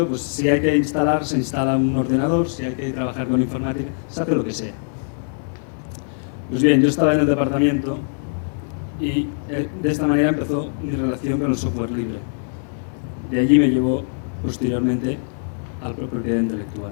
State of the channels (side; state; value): right; silent; digital silence